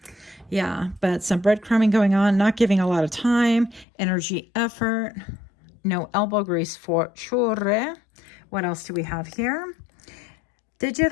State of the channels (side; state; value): right; drops out; at 3.9 s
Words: Yeah, but some breadcrumbing going on, not giving a lot of time, energy, effort, no elbow grease for sure. What else do we have here?